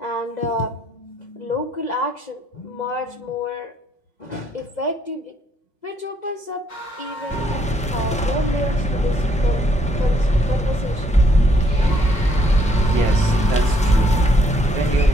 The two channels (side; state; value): both; normal; correlation 0.70